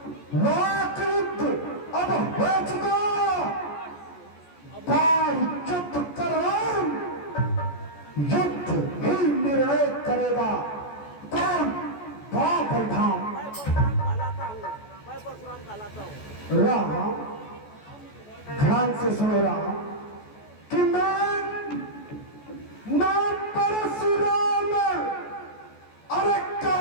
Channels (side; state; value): right; late; 14 ms